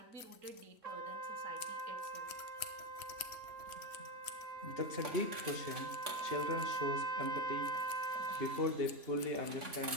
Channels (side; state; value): left; late; 3.1 ms